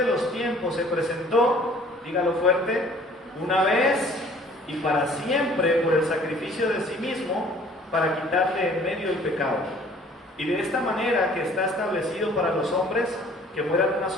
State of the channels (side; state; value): both; normal; correlation 0.53